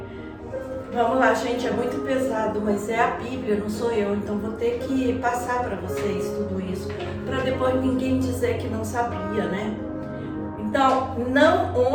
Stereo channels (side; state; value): both; identical; correlation 1.00